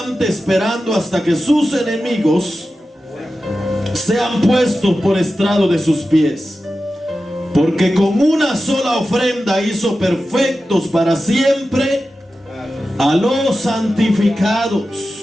esperando hasta que sus enemigos sean puestos por estrado de sus pies. Porque con una sola ofrenda hizo perfectos para siempre a los santificados.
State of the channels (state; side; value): normal; both; correlation 0.93